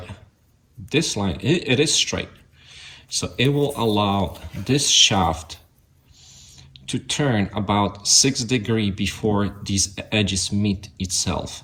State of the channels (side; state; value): both; identical; correlation 1.00